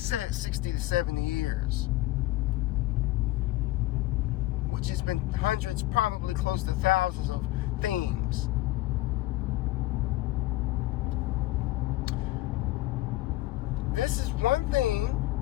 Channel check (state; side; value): quieter; right; 17.5 dB